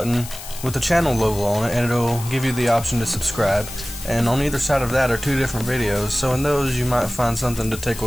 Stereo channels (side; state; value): left; noise; hiss, 13 dB below the sound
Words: with the channel logo on it, and it'll give you the option to subscribe. And on either side of that are 2 different videos, so in those you might find something to